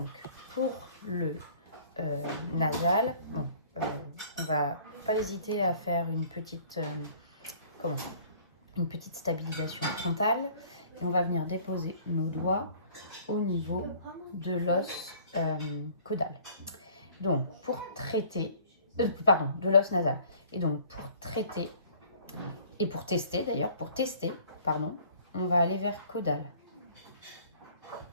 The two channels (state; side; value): inverted; both; correlation -0.53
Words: pour le nasal, bon, on va pas hésiter à faire une petite stabilisation frontale. Et on va venir déposer nos doigts au niveau de l'os caudal. Donc, pour traiter, de l'os nasal. Et donc, pour traiter, et pour tester d'ailleurs, on va aller vers caudal.